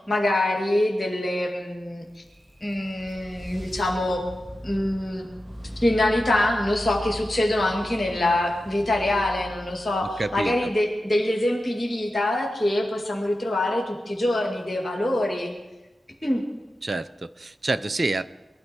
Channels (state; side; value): normal; both; correlation 0.92